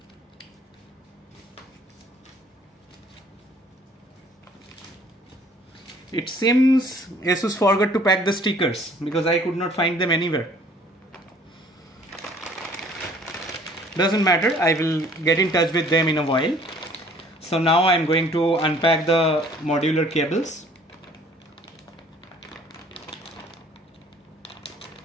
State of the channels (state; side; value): normal; both; correlation 0.55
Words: It seems ASUS forgot to pack the stickers because I could not find them anywhere. Doesn't matter, I will get in touch with them in a while. So now I'm going to unpack the modular cables.